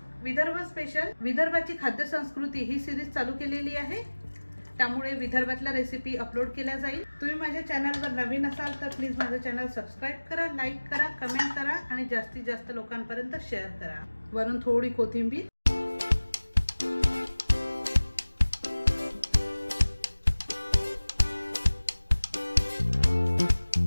विदर्भ स्पेशल विदर्भाची खाद्य संस्कृती ही सिरीज चालू केलेली आहे, त्यामुळे विदर्भातल्या रेसिपी अपलोड केल्या जाईल। तुम्ही माझ्या चॅनलवर नवीन असाल तर प्लीज माझं चॅनल सबस्क्राइब करा, लाईक करा, कमेंट करा आणि जास्तीत जास्त लोकांपर्यंत शेअर करा। वरून थोडी कोथिंबीर,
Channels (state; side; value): inverted; both; correlation -1.00